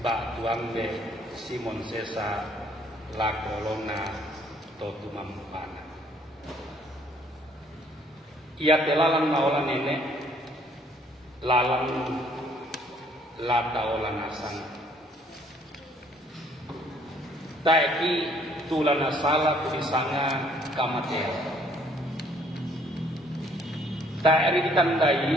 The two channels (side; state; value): both; normal; correlation 0.63